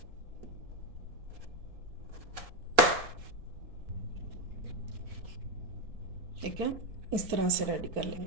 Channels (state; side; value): late; left; 4.2 ms